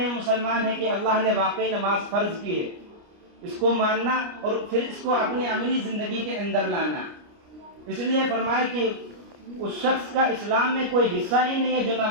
مسلمان ہیں کہ اللہ نے واقعی نماز فرض کی ہے، اس کو ماننا اور پھر اس کو اپنی عملی زندگی کے اندر لانا۔ اس لیے فرمایا کہ اس شخص کا اسلام میں کوئی حصہ ہی نہیں ہے جو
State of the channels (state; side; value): late; left; 29 ms